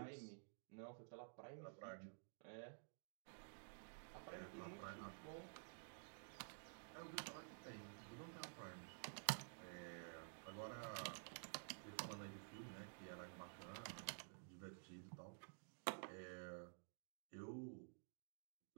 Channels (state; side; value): silent; left; digital silence